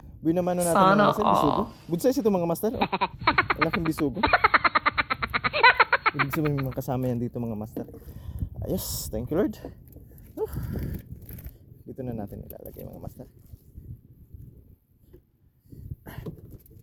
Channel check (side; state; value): both; identical; correlation 1.00